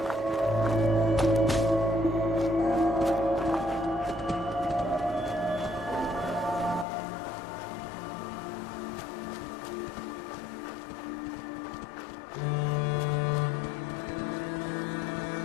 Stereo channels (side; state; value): right; drops out; at 6.9 s